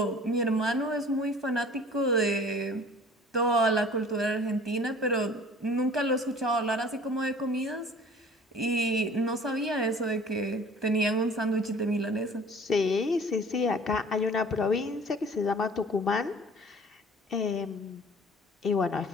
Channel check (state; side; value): normal; both; correlation 0.48